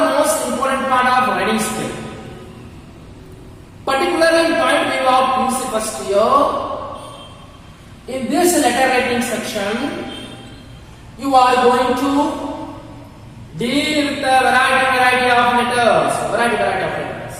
most important part of writing skill. Particularly in point view of PUC first year, in this letter writing section, you are going to deal with the variety of letters. Variety of letters.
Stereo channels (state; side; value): identical; both; correlation 1.00